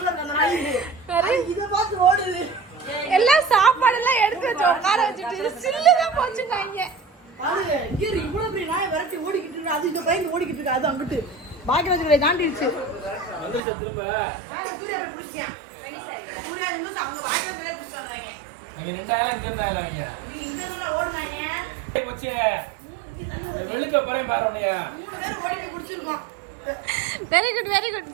அந்த நாய் இதை பார்த்து ஓடுது. எல்லாம் சாப்பாடு எல்லாம் எடுத்து வச்சு உட்கார வச்சுட்டு சில்லுதான் போச்சுட்டாங்க. பாருங்க இங்க இவ்வளவு பெரிய நாய் விரட்டி ஓடிக்கிட்டு இருக்கு. அது இந்த பையன் ஓடிக்கிட்டு இருக்கு. அது அங்கிட்டு பாக்கியராஜ் தாண்டிடுச்சு. வந்துருச்சு திரும்ப. சூர்யா போய் பிடிச்சேன். சூர்யா நிமிஷம் அவங்க பாக்கியராஜ் பிடிச்சு வந்தாங்க. நீங்க 2 ஆயிரம் இங்க இருந்தாங்க நீங்க. நீ இந்த மாதிரி ஓடுனாங்க. போச்சு. வெளுக்க போறேன் பாரு உன்னைய. 3 பேர் ஓடிட்டு குடிச்சிருக்கோம். Very good very good.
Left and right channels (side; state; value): left; drops out; at 13.6 s